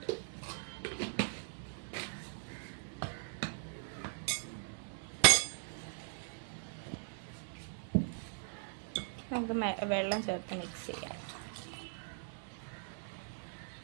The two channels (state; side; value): silent; left; digital silence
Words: നമുക്ക് വെള്ളം ചേർത്ത് മിക്സ് ചെയ്യാം.